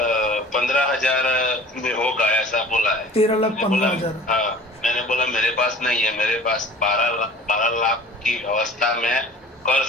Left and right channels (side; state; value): both; normal; correlation 0.44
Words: 15,000 में होगा, ऐसा बोला है। 13,15,000। हाँ, मैंने बोला मेरे पास नहीं है, मेरे पास 12 लाख की अवस्था में कर